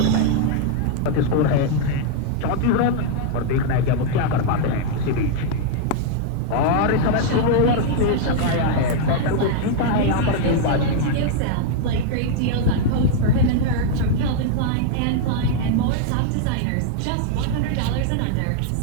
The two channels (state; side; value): different; both; correlation 0.00